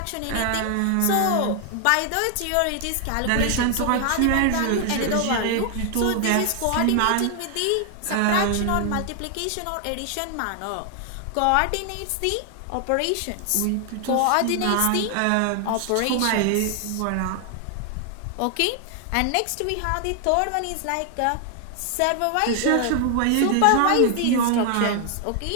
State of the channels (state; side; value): different; both; correlation 0.00